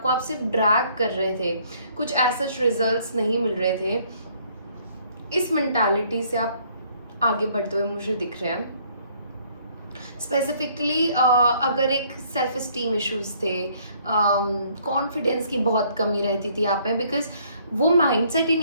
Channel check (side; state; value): both; inverted; correlation -0.63